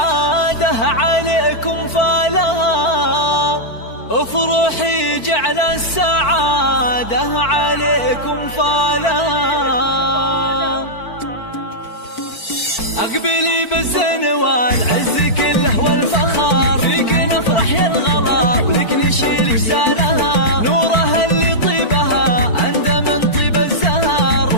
عليكم فالها، افرحي جعل السعادة عليكم فالها. أقبلي بالزين والعز كله والفخر، فيك نفرح يا الغلا ولك نشيل جسالها. نورها اللي طيبها أندى من طيب الزهر،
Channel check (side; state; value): right; late; 4.5 ms